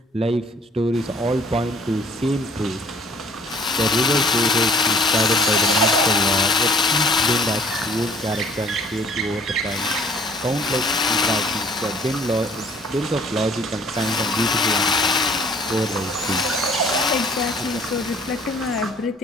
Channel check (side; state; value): both; normal; correlation 0.56